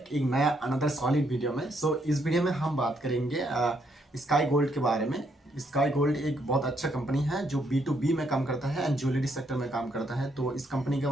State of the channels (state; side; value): normal; both; correlation 0.74